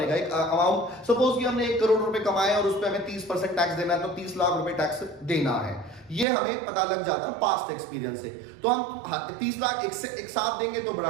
एक अमाउंट सपोज कि हमने 1 करोड़ रुपए कमाए और उस पे हमें 30% टैक्स देना है, तो 30 लाख रुपए टैक्स देना है, ये हमें पता लग जाता है पास्ट एक्सपीरियंस से। तो हम 30 लाख एक साथ देंगे तो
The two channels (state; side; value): drops out; left; at 6.2 s